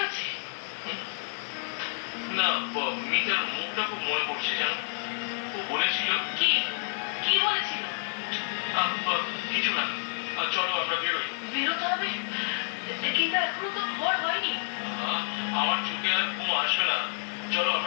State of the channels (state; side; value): silent; right; digital silence